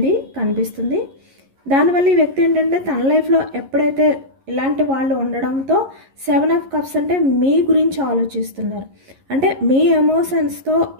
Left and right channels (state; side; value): late; left; 11 ms